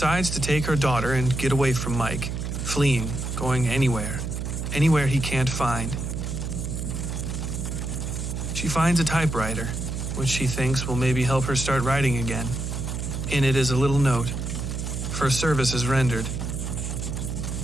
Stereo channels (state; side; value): noise; right; hum, 4 dB below the sound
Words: to take her daughter and get away from Mike, fleeing, going anywhere he can't find. She finds a typewriter, which she thinks will maybe help her start writing again. In it is a little note, for services rendered.